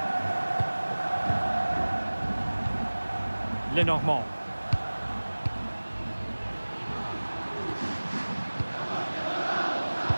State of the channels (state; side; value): inverted; both; correlation -1.00